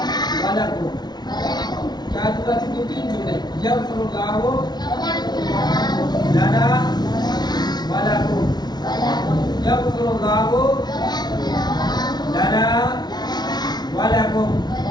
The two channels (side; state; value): right; late; 0.20 ms